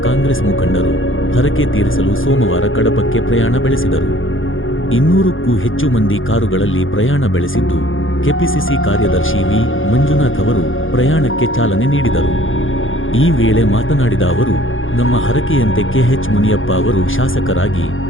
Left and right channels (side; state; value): right; late; 0.58 ms